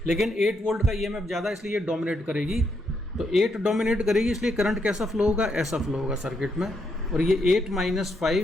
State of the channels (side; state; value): both; normal; correlation 0.78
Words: लेकिन 8 वोल्ट का ईएमएफ ज़्यादा, इसलिए ये डोमिनेट करेगी। तो 8 डोमिनेट करेगी, इसलिए करंट कैसा फ्लो होगा, ऐसा फ्लो होगा सर्किट में। और ये 8 -